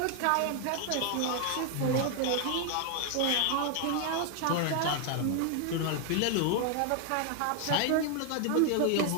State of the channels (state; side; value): different; both; correlation 0.00